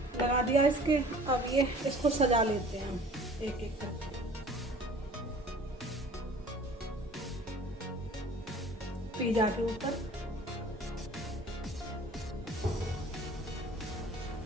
लगा दिया इसके। अब ये इसको सजा लेते हैं हम एक एक करके। पिज़्ज़ा के ऊपर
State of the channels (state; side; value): normal; both; correlation 0.48